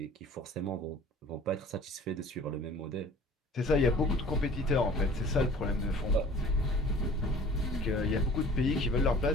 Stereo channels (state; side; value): normal; both; correlation 0.47